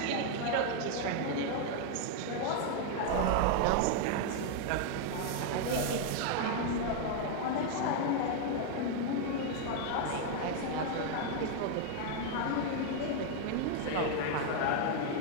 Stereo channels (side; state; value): both; different; correlation 0.00